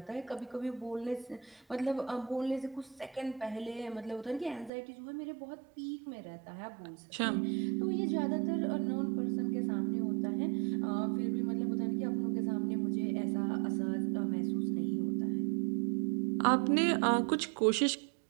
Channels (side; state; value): left; drops out; at 4.7 s